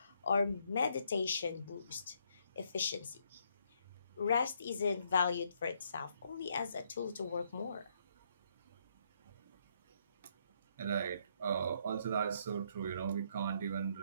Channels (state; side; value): inverted; both; correlation -0.72